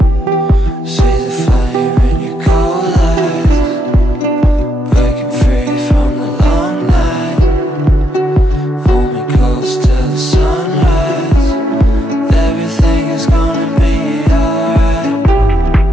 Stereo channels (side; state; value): both; normal; correlation 0.79